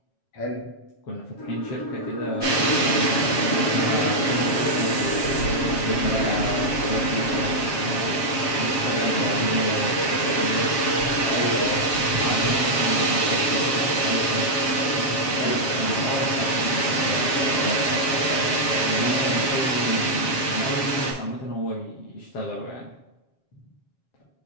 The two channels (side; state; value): right; late; 7.4 ms